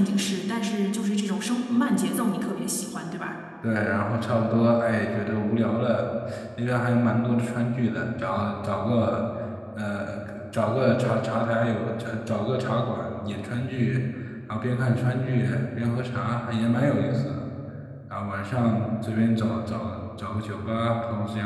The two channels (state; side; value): identical; both; correlation 1.00